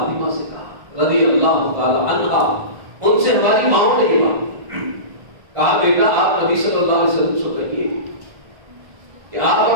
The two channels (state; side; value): late; left; 1.5 ms